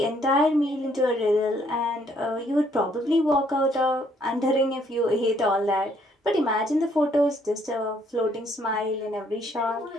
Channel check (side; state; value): both; normal; correlation 0.67